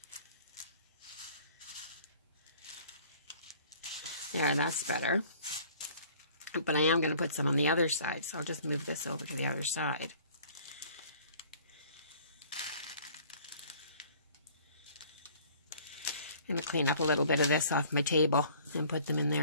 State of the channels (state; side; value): inverted; both; correlation -0.52